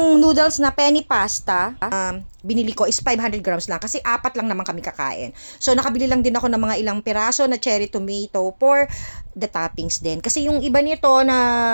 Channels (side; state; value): both; inverted; correlation -1.00